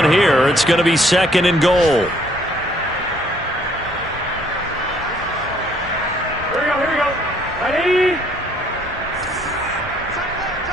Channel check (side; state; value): both; normal; correlation 0.63